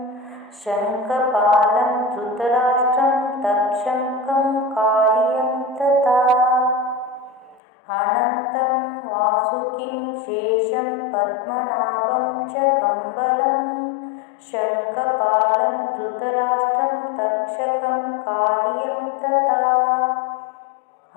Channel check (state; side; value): drops out; right; at 7.6 s